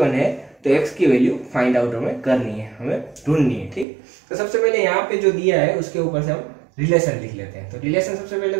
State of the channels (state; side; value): drops out; left; at 3.9 s